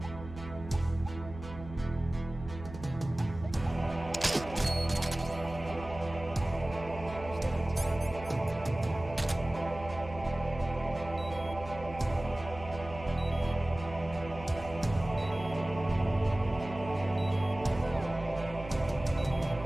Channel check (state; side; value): noise; right; hum, 14 dB below the sound